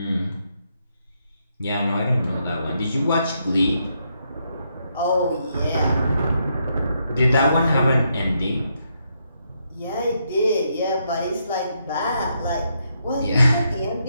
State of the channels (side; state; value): both; inverted; correlation -0.78